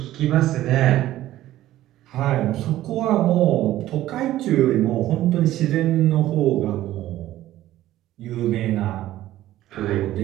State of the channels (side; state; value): left; quieter; 14.4 dB